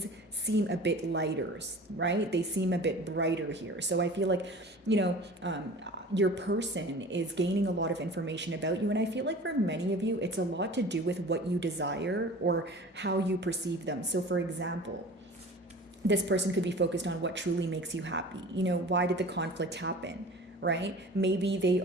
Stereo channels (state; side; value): normal; both; correlation 0.40